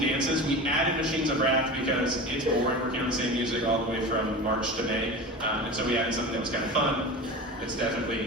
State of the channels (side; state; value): both; normal; correlation 0.30